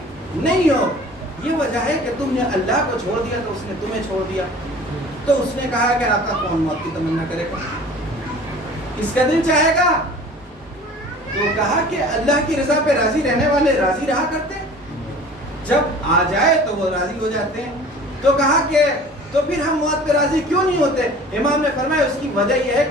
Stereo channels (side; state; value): both; normal; correlation 0.45